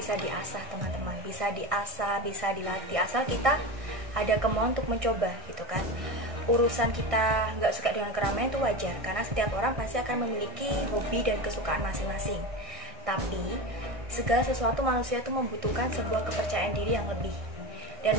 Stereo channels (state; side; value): late; left; 1.6 ms